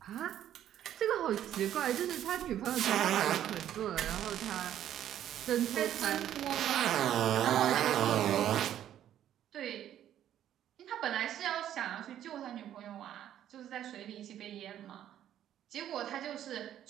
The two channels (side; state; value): left; quieter; 11.1 dB